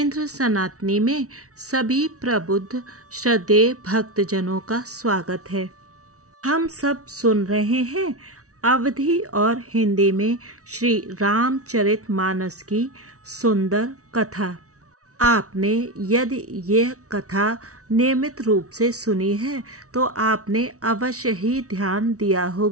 सनातनी में सभी प्रबुद्ध श्रद्धेय भक्तजनों का स्वागत है। हम सब सुन रहे हैं अवधी और हिंदी में श्री रामचरितमानस की सुंदर कथा। आपने यदि यह कथा नियमित रूप से सुनी है तो आपने अवश्य ही ध्यान दिया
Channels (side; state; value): left; late; 0.65 ms